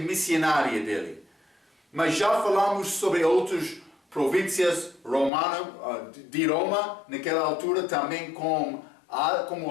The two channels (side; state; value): right; drops out; at 5.3 s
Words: missionária dele. Mas já falamos sobre outras províncias romanas de Roma, naquela altura também como